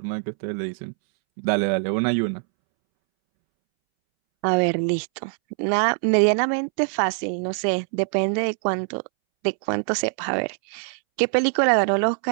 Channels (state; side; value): silent; left; 63 dB below the other